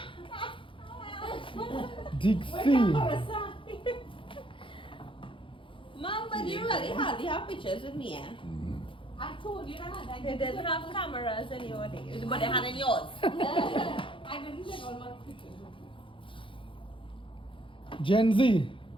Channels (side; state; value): right; late; 0.25 ms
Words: Dixie. Mom, but you really hardly have pictures with me, eh? I told you that. I They didn't have cameras in your days. But they had in yours. I didn't take all my pictures. Gen Z.